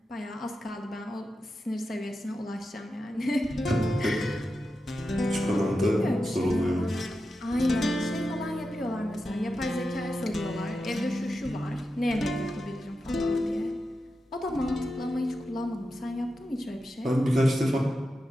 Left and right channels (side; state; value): both; normal; correlation 0.90